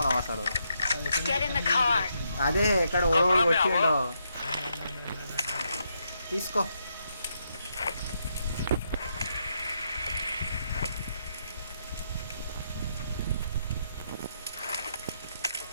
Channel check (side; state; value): both; inverted; correlation -0.79